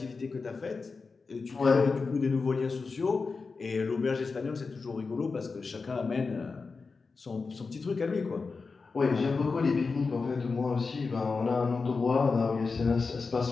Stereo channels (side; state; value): right; quieter; 4.4 dB